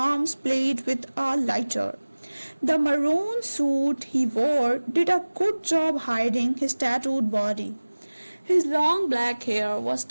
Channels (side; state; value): both; inverted; correlation -1.00